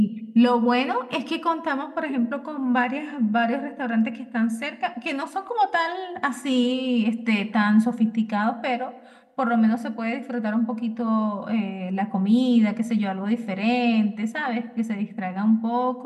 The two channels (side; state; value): both; identical; correlation 1.00